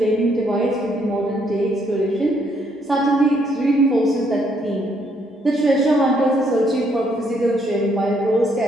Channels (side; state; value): both; normal; correlation 0.71